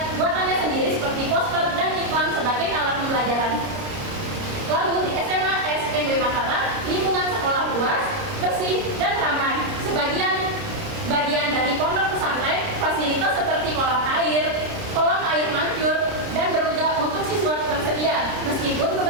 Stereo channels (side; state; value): left; late; 30 ms